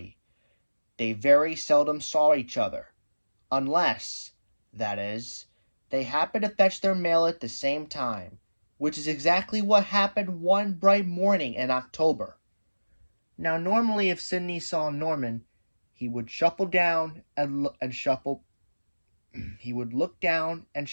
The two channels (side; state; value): both; inverted; correlation -1.00